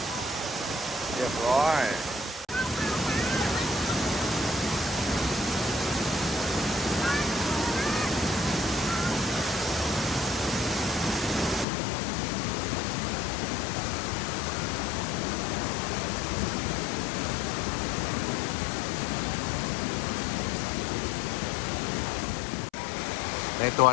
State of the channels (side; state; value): right; drops out; at 11.7 s